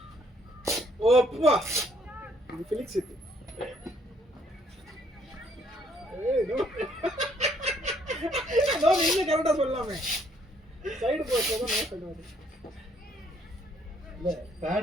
ஓப்பா இது பிலிக்ஸ் இது. நீங்க கரெக்டா சொல்லலாமே. சைடு போஸ்ட் தான் நான் சொல்றது. இல்ல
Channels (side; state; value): both; normal; correlation 0.66